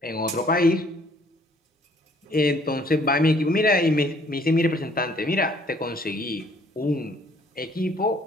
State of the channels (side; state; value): both; normal; correlation 0.61